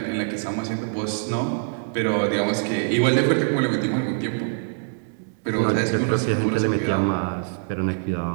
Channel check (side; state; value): left; silent; digital silence